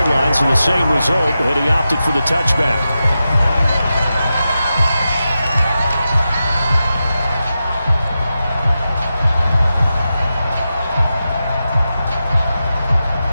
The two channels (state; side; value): inverted; both; correlation -0.91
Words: line, so the same result, and he opted for the touchback.